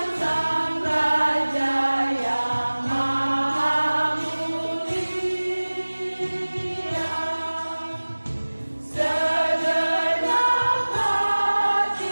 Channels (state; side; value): inverted; both; correlation -1.00